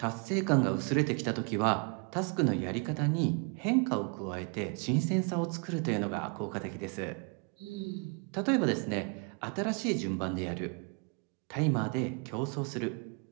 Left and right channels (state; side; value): quieter; left; 34.3 dB